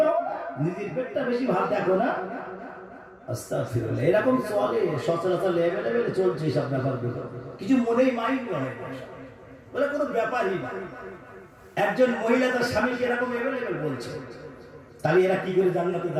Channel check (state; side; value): identical; both; correlation 1.00